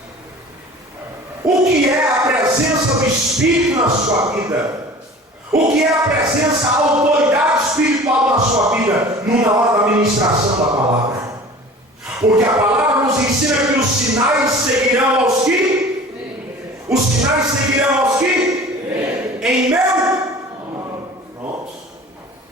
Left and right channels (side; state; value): both; normal; correlation 0.42